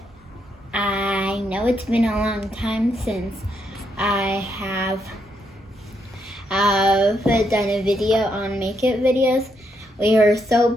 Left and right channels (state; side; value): normal; both; correlation 0.78